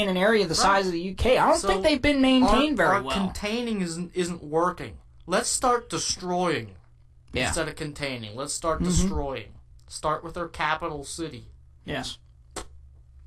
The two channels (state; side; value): identical; both; correlation 1.00